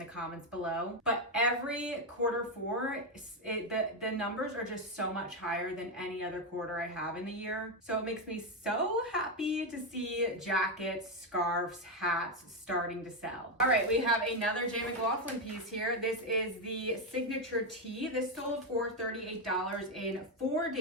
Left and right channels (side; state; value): both; normal; correlation 0.07